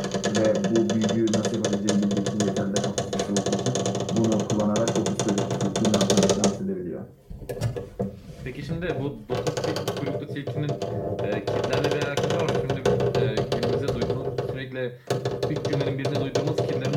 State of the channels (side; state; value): both; identical; correlation 1.00